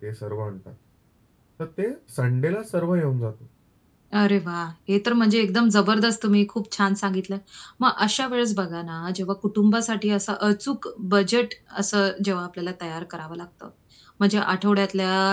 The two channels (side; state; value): both; identical; correlation 1.00